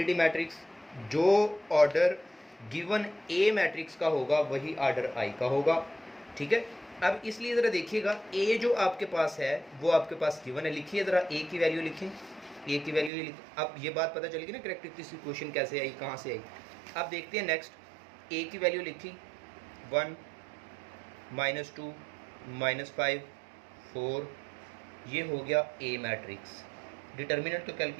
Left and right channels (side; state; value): left; drops out; at 13.1 s